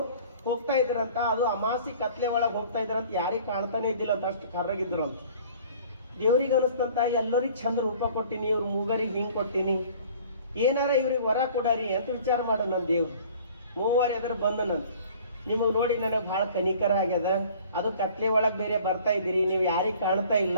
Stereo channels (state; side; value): inverted; both; correlation -0.50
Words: ಹೋಗ್ತಾ ಇದ್ರಂತ. ಅದು ಅಮಾಸಿ ಕತ್ಲೆ ಒಳಗೆ ಹೋಗ್ತಾ ಇದ್ರಂತ, ಯಾರಿಗೆ ಕಾಣ್ತಾನೆ ಇದ್ದಿಲ್ಲ ಅಂತ, ಅಷ್ಟು ಕರ್ರಗಿದ್ರು ಅಂತ. ದೇವ್ರಿಗೆ ಅನಿಸ್ತಂತ ಎಲ್ಲರಿಗೆ ಚಂದ ರೂಪ ಕೊಟ್ಟಿನಿ, ಇವ್ರ ಮೂಗರಿಗೆ ಹಿಂಗೆ ಕೊಟ್ಟಿನಿ, ಏನಾರ ಇವ್ರಿಗೆ ವರ ಕೊಡಾರಿ ಅಂತ ವಿಚಾರ ಮಾಡ ನನ್ನ ದೇವ್ರು. ಮೂವರು ಎದುರು ಬಂದನಂತ, ನಿಮಗೆ ನೋಡಿ ನನಗೆ ಭಾಳ ಕನಿಕರ ಆಗ್ಯದ, ಅದು ಕತ್ಲೆ ಒಳಗೆ ಬೇರೆ ಬರ್ತಾ ಇದ್ದೀರಿ, ನೀವು ಯಾರಿಗೆ ಕಾಣ್ತಾ